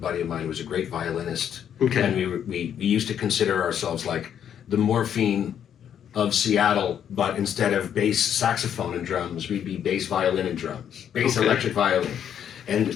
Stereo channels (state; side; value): quieter; right; 9.1 dB